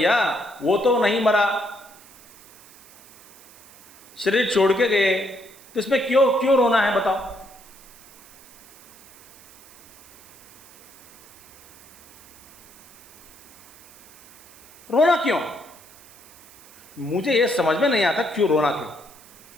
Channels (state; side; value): noise; right; hiss, 22 dB below the sound